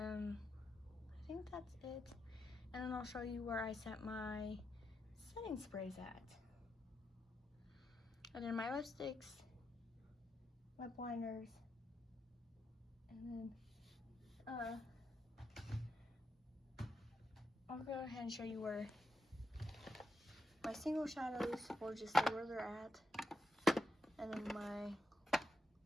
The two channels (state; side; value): normal; both; correlation 0.85